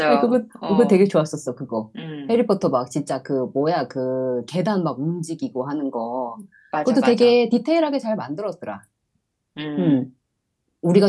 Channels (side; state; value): both; identical; correlation 1.00